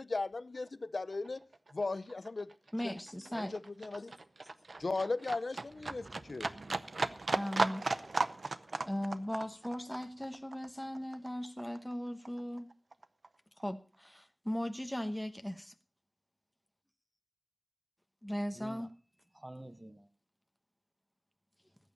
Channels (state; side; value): normal; both; correlation 0.97